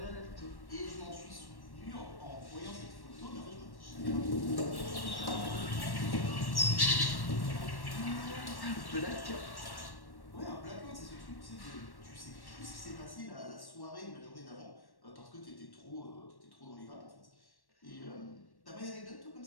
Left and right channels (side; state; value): right; late; 1.1 ms